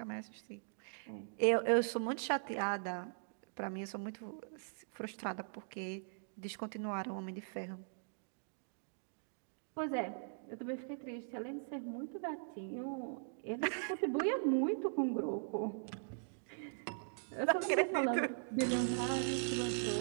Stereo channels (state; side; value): silent; left; digital silence